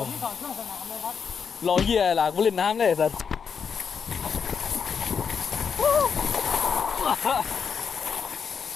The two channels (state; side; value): quieter; right; 6.5 dB